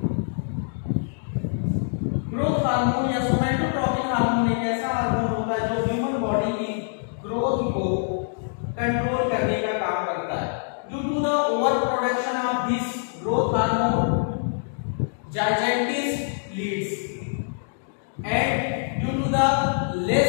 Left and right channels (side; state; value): right; silent; digital silence